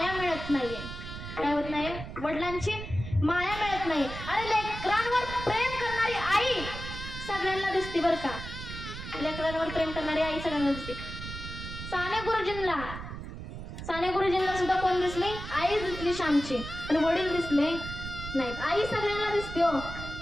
मिळत नाहीये. काय होत नाही? वडिलांची माया मिळत नाही. अरे लेकरांवर प्रेम करणारी आई सगळ्यांना दिसते बरं का. लेकरांवर प्रेम करणारी आई सगळ्यांना दिसते. साने गुरुजींना सुद्धा कोण दिसली? आई दिसली श्यामची, आणि वडील दिसले नाहीत. आई सगळ्यांना दिसते हो,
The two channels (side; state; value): right; noise; rumble, 9 dB below the sound